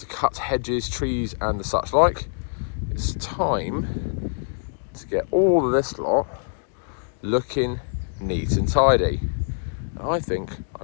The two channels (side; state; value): right; silent; digital silence